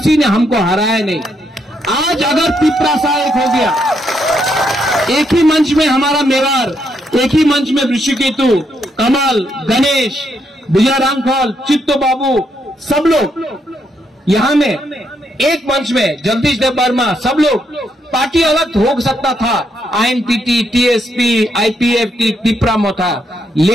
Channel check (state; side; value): normal; both; correlation 0.77